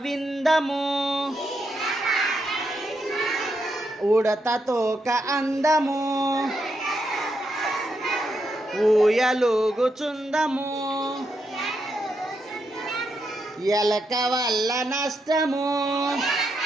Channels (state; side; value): normal; both; correlation 0.82